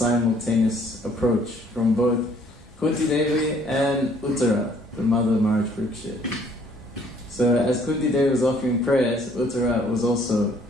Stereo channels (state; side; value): normal; both; correlation 0.60